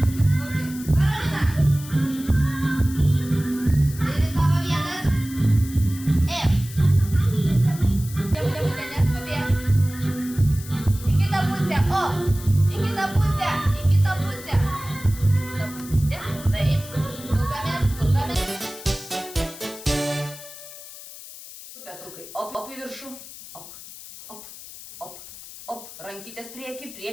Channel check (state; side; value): noise; left; hiss, 15 dB below the sound